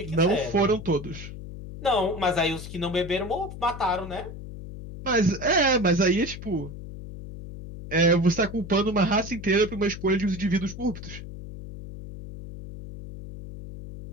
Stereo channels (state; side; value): noise; left; hum, 11 dB below the sound